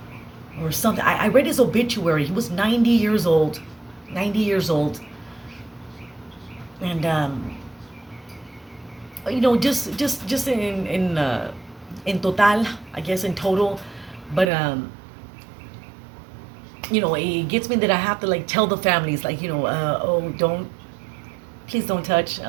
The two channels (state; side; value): drops out; left; at 14.5 s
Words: Or something. I read his obituary. He was 90 years old. 90 years old. And just in total, I guess in total, but it gets me that I have to like tell the families, like, oh, please don't touch,